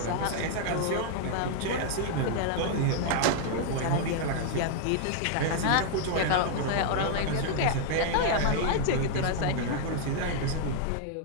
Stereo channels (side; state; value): both; different; correlation 0.00